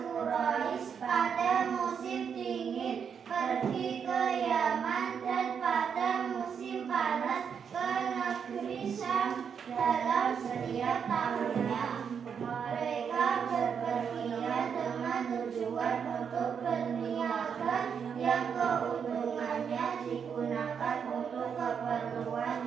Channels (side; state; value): left; quieter; 7.0 dB